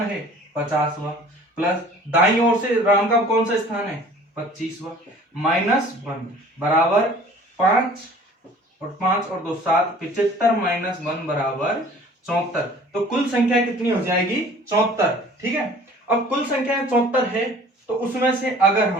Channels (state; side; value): normal; both; correlation 0.49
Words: है? 50वां, प्लस दाईं ओर से राम का कौन सा स्थान है? 25वां, -1 बराबर 5, और 5 और 2 7, 75 -1 बराबर 74। तो कुल संख्या कितनी हो जाएगी? 74। ठीक है। अब कुल संख्या 74 है, तो उसमें से